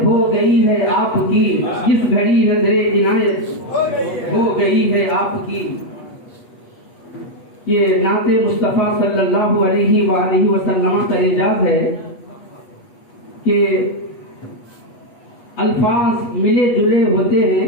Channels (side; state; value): right; late; 8.3 ms